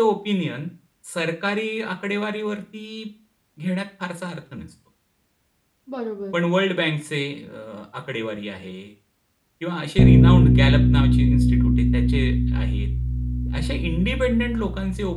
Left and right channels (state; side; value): identical; both; correlation 1.00